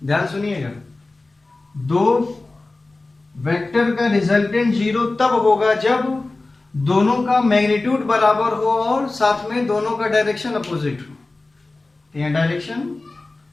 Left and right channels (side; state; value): right; quieter; 3.2 dB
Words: ध्यान सुनिएगा, दो वेक्टर का रिजल्टेंट जीरो तब होगा जब दोनों का मैग्नीट्यूड बराबर हो और साथ में दोनों का डायरेक्शन अपोजिट हो। तो यहाँ डायरेक्शन